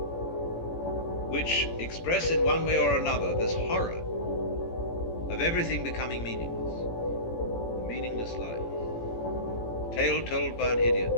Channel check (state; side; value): late; right; 17 ms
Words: which express in one way or another this horror of everything becoming meaningless, a meaningless life, a tale told by an idiot